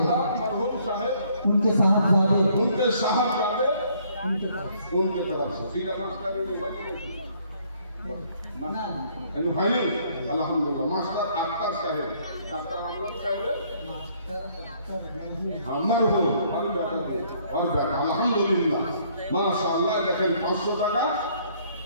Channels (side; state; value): both; inverted; correlation -0.64